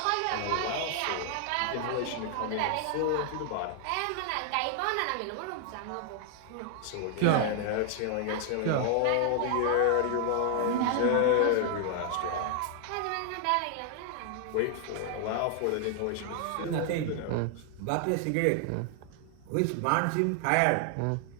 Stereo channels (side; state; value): both; different; correlation 0.00